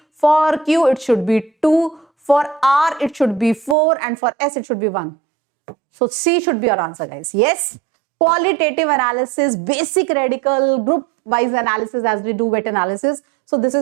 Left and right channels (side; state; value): left; drops out; at 3.8 s